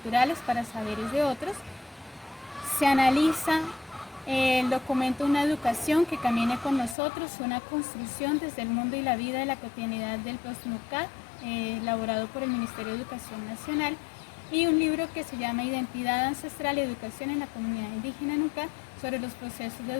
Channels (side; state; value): right; drops out; at 7.0 s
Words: para Saberes de Otros. Se analiza el documento Una educación que camine con nosotros, una construcción desde el mundo y la vida de la cotidianidad del POSNUCAD, elaborado por el Ministerio de Educación Nacional, y un libro que se llama Identidad Ancestral y Educación en la Comunidad Indígena Nucad, sobre los procesos de